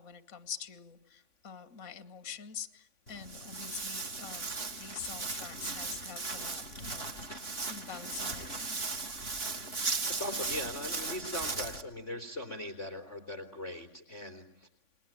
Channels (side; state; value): right; late; 3.5 ms